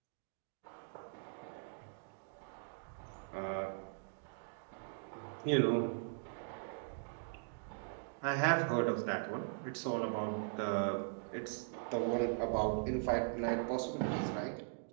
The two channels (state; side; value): silent; left; digital silence